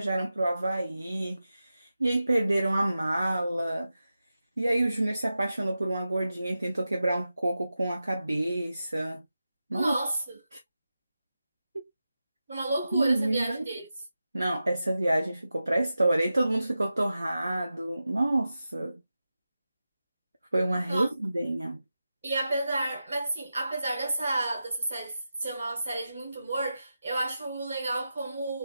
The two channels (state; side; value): inverted; both; correlation -0.92